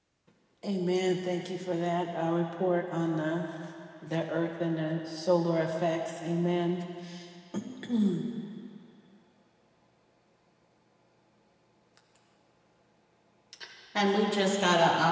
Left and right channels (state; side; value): identical; both; correlation 1.00